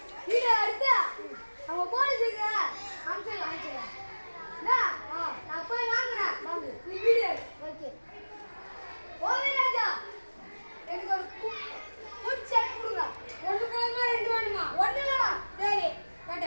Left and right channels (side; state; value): both; inverted; correlation -1.00